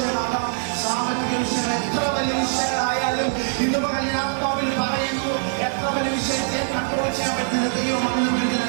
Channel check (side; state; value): left; silent; digital silence